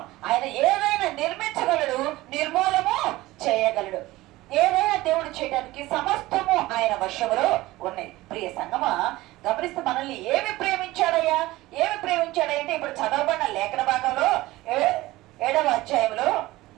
ఆయన ఏదైనా నిర్మించగలడు, నిర్మూలము చేయగలడు. ఏదైనా దేవుడు చేయడానికి సమస్తము ఆయన వశములో ఉన్నాయి. ప్రియ సంగమా, గమనిస్తే మనల్ని ఏమి ప్రేమించాడయ్యా, అంటే ఇప్పుడు చదవబడిన లేఖన భాగంలో 7వ అధ్యాయంలో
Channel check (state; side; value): quieter; left; 18.4 dB